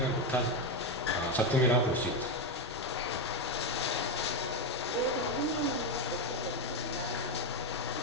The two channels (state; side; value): normal; both; correlation 0.09